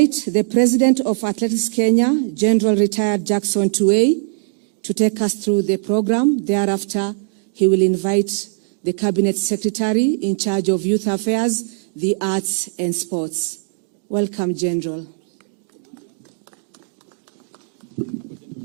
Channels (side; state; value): left; silent; digital silence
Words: the President of Athletics Kenya, General Retired Jackson Tuwei, to take us through the program. Thereafter, he will invite the Cabinet Secretary in charge of Youth Affairs, the Arts and Sports. Welcome, General.